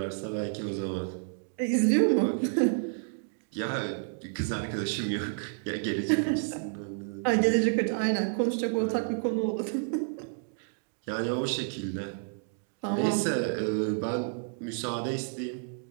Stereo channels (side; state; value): left; silent; digital silence